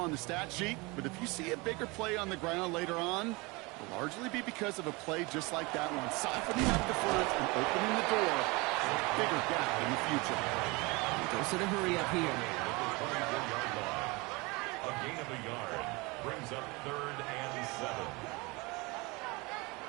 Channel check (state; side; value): quieter; left; 25.6 dB